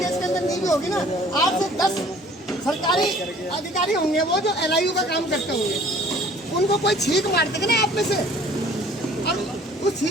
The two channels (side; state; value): both; normal; correlation 0.53